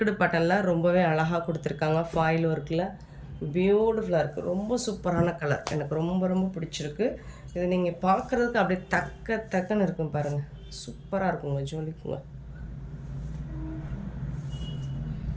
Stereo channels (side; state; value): both; identical; correlation 1.00